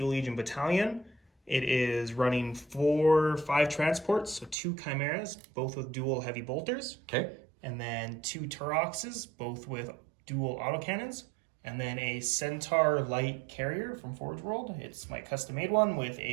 Legion battalion, it is running 5 transports, so 2 Chimeras, both with dual heavy bolters. Okay. And then 2 Turoxes, both with dual autocannons. And then a Centaur light carrier from Forge World. It's my custom-made one with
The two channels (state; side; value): drops out; left; at 4.5 s